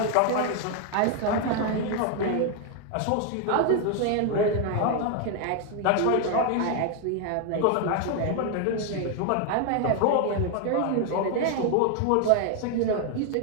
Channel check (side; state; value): both; different; correlation 0.00